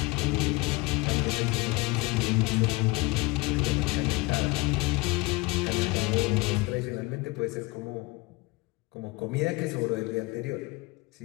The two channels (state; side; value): quieter; right; 23.7 dB